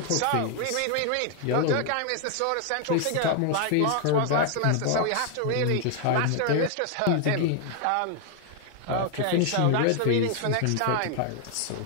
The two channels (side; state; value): both; different; correlation 0.00